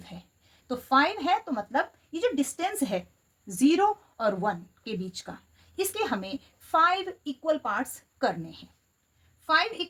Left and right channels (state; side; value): identical; both; correlation 1.00